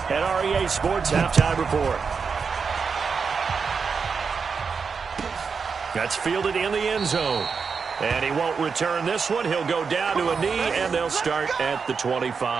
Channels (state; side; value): quieter; left; 5.5 dB